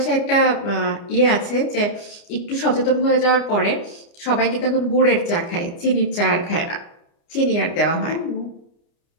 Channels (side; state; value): right; late; 29 ms